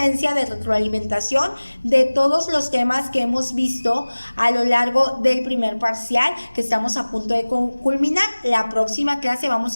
de retroalimentación de todos los temas que hemos visto a lo largo del primer parcial, que estamos a punto de culminar. La próxima clase vamos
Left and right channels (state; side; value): inverted; both; correlation -1.00